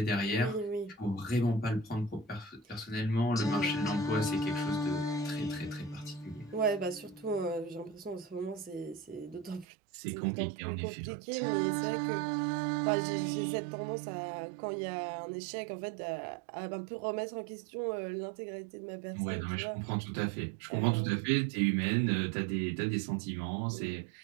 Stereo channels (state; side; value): drops out; left; at 9.7 s